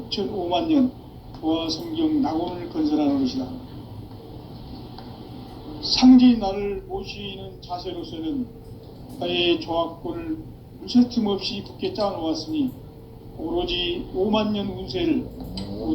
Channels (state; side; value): identical; both; correlation 1.00